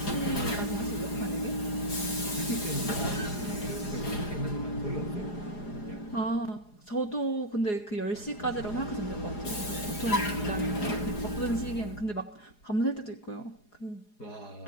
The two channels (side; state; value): right; late; 4.8 ms